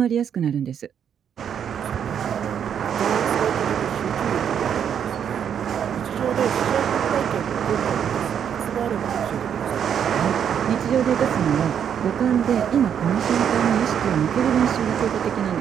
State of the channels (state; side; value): quieter; left; 8.4 dB